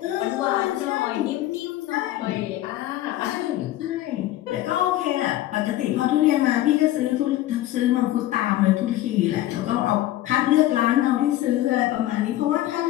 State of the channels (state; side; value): quieter; right; 14.6 dB